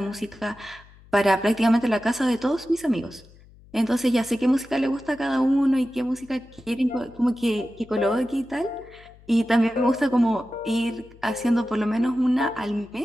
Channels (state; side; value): noise; left; hum, 24 dB below the sound